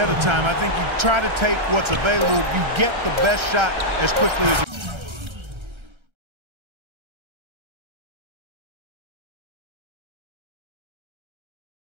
of time. I think you try to take what's available. You get the best shot as quickly as you can.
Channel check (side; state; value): left; late; 1.3 ms